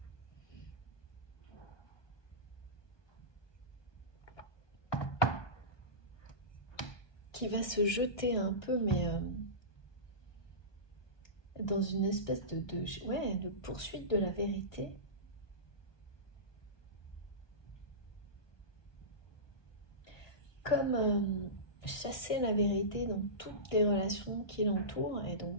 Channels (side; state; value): right; late; 1.2 ms